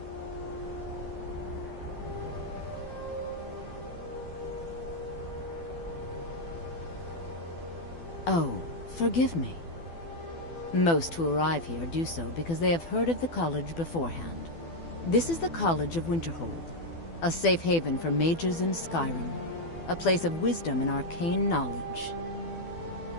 Oh, forgive me. Most who arrive here do so because they have heard of the college beforehand. This is the College of Winterhold, a safe haven for mages in Skyrim, a place of wisdom and arcane knowledge.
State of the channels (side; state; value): right; late; 12 ms